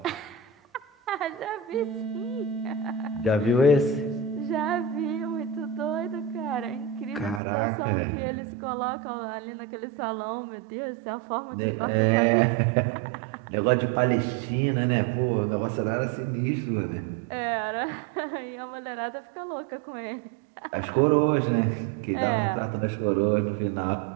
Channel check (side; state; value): left; drops out; at 7.4 s